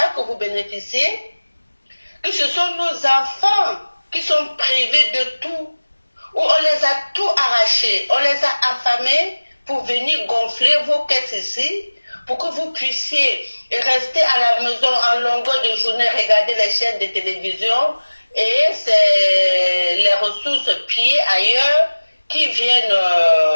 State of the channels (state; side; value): inverted; both; correlation -1.00